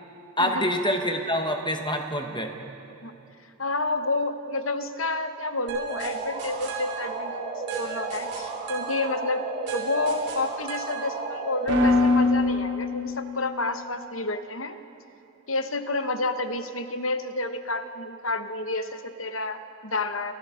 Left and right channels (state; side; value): normal; both; correlation 0.00